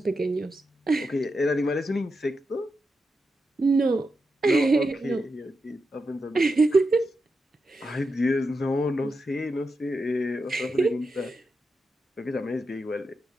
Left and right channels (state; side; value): normal; both; correlation 0.87